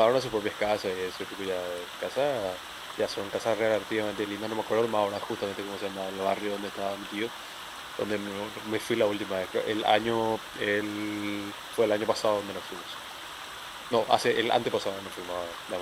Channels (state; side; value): identical; both; correlation 1.00